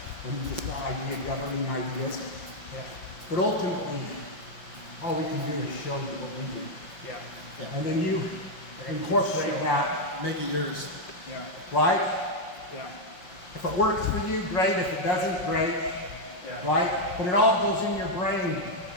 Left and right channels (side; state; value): right; late; 5.6 ms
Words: and just the idea, governing ideas. Yeah. But ultimately, all we can do is show you what we do. Yeah. And then you incorporate that, make it yours. Yeah. right? Yeah. If it works for you, great. If it doesn't, great. Yeah. Right? But it all goes in your brain